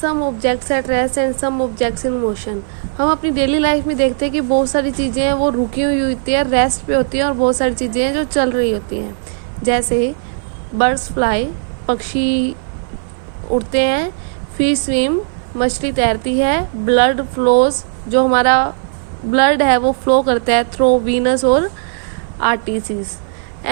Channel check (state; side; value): silent; left; 57 dB below the other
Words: objects at rest and some objects in motion. हम अपनी daily life में देखते हैं कि बहुत सारी चीज़ें हैं वो रुकी हुई होती है, रेस्ट पे होती हैं, और बहुत सारी चीज़ें हैं जो चल रही होती हैं. जैसे बर्ड्स फ्लाई, पक्षी उड़ते हैं, फिश स्विम, मछली तैरती है, ब्लड फ्लोज, जो हमारा ब्लड है वो फ्लो करता है थ्रू वीनस और आर्टरीज,